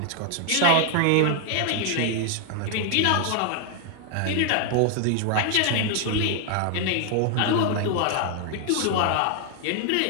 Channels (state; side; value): different; both; correlation 0.00